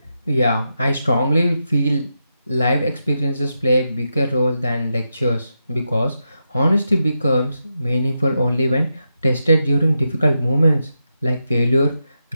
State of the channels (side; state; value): both; inverted; correlation -0.87